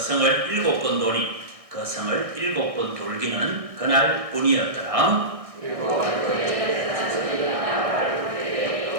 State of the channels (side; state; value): left; late; 1.6 ms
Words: 7번 도니 그 성을 7번 돌기는 그날 뿐이었더라.